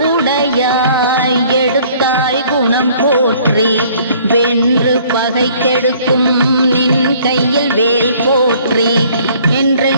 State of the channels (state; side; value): inverted; both; correlation -0.57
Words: எடுத்தாய் குணம் போற்றி வென்று பகை கெடுக்கும் நின் கையில் வேல் போற்றி